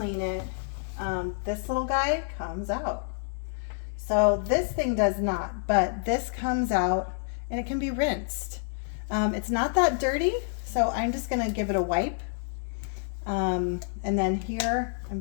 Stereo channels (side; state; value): right; silent; digital silence